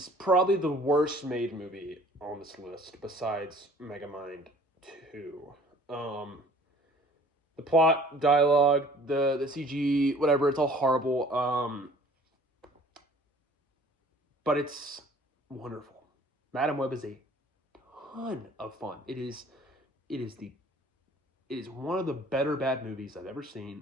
probably the worst made movie on this list, besides Megamind 2. The plot, dialogue, the CG, whatever, it's all horrible. But it's wonderful. Madam Web is a ton of fun. It is one of the better bad movies I've ever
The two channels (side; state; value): both; normal; correlation 0.52